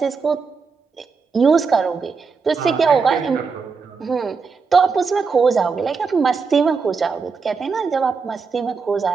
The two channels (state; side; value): quieter; left; 5.0 dB